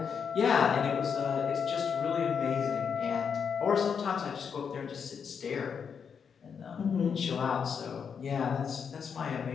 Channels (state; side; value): quieter; right; 6.7 dB